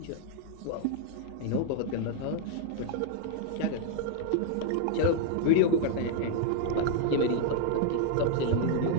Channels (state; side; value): different; both; correlation 0.00